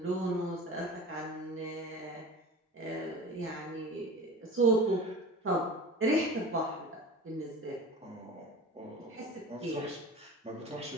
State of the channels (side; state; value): both; normal; correlation 0.35